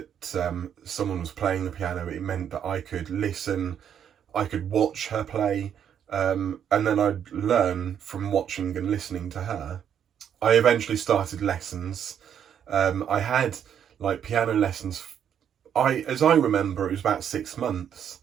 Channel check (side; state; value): left; quieter; 8.9 dB